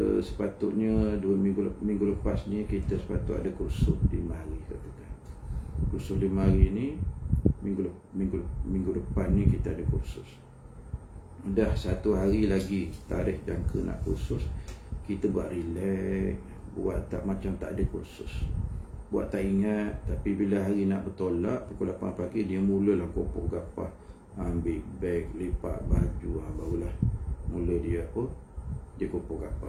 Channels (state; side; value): identical; both; correlation 1.00